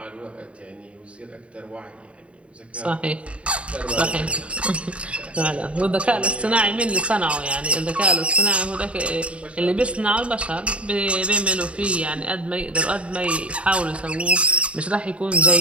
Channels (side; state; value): left; late; 0.061 ms